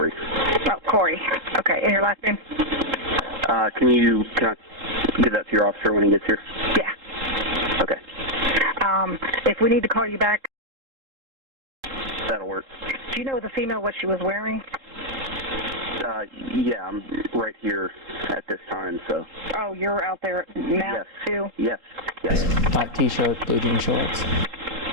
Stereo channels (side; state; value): left; late; 3.7 ms